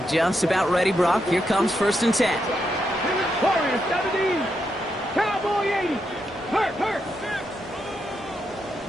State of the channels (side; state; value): both; normal; correlation 0.82